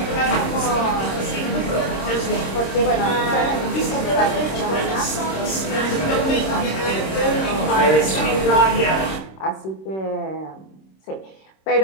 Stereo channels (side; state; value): right; late; 26 ms